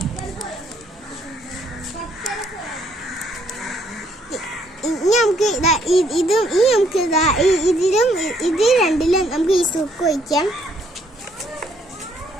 നമുക്ക് ഇതിൽ രണ്ടിലും നമുക്ക് ഈ സുക്ക് ഒഴിക്കാം.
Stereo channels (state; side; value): normal; both; correlation 0.69